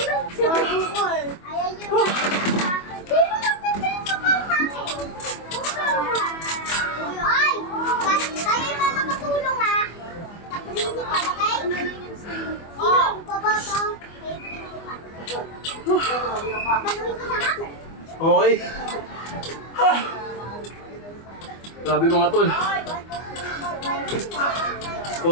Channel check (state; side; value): late; right; 24 ms